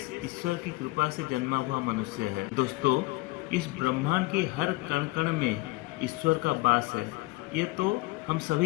ईश्वर की कृपा से जन्मा हुआ मनुष्य है। दोस्तों, इस ब्रह्मांड के हर कण कण में ईश्वर का वास है, ये तो हम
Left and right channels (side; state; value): right; quieter; 21.8 dB